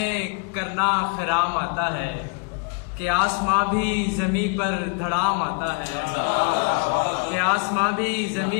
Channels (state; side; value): quieter; right; 36.0 dB